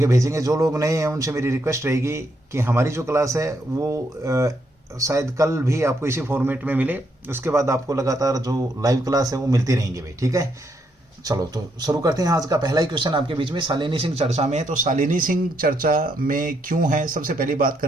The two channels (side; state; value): both; normal; correlation 0.76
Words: भेजेंगे। जो लोग नए हैं उनसे मेरी रिक्वेस्ट रहेगी कि हमारी जो क्लास है वो शायद कल भी आपको इसी फॉर्मेट में मिले, उसके बाद आपको लगातार जो लाइव क्लास है वो मिलती रहेंगी भाई, ठीक है। चलो तो शुरू करते हैं। आज का पहला ही क्वेश्चन आपके बीच में शालिनी सिंह चर्चा में है। तो शालिनी सिंह चर्चा में क्यों है, सबसे पहली बात